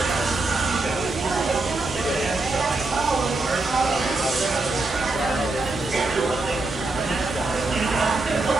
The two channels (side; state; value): left; quieter; 3.2 dB